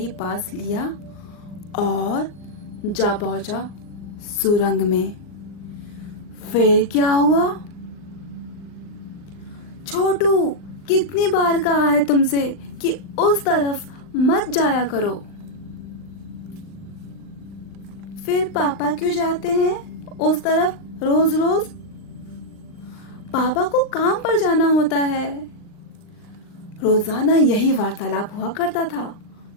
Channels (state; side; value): late; right; 39 ms